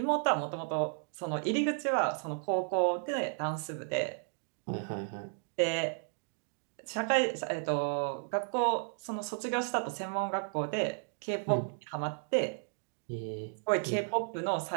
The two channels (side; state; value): left; silent; 55 dB below the other